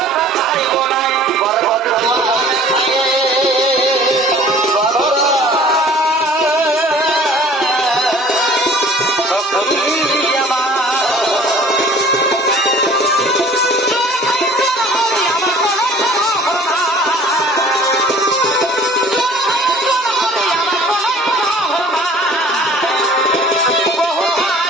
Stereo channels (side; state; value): both; normal; correlation 0.49